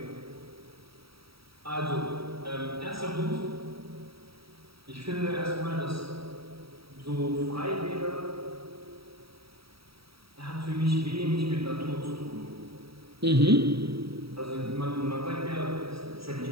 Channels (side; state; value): left; late; 0.76 ms